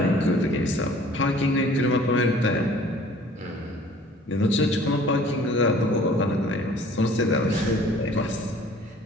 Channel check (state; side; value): normal; both; correlation 0.51